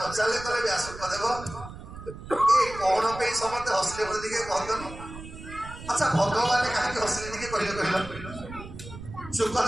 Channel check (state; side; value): noise; right; rumble, 13 dB below the sound